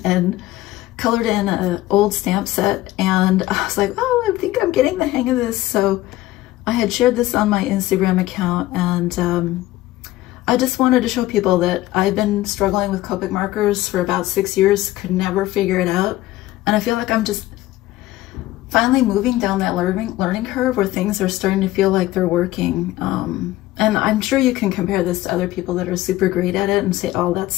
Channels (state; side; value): quieter; right; 16.3 dB